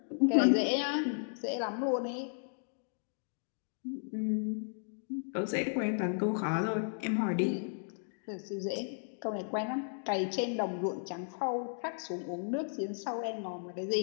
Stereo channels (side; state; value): right; silent; digital silence